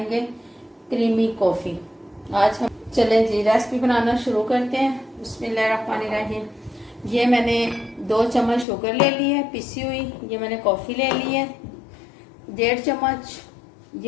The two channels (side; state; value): right; drops out; at 8.7 s